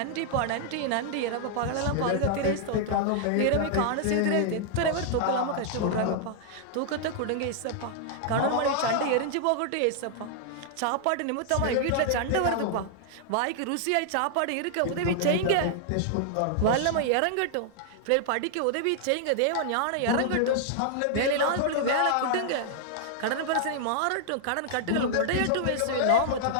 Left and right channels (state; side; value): different; both; correlation -0.01